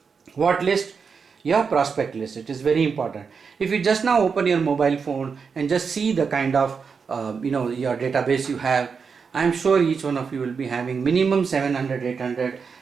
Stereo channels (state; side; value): quieter; left; 5.7 dB